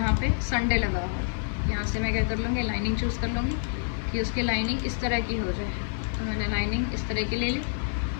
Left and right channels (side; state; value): right; silent; digital silence